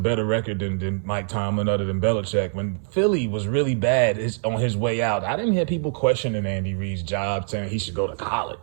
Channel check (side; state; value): left; silent; 63 dB below the other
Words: record than Mike Tomlin other than Belichick. When Philly was really bad on his way out, I didn't hear people questioning Andy Reid's job, saying he should go to